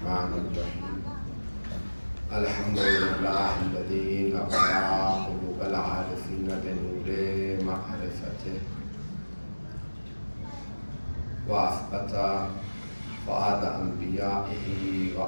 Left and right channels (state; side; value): inverted; both; correlation -1.00